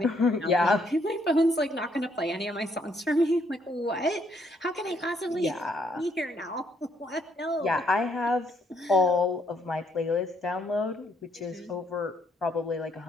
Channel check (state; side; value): normal; both; correlation 0.70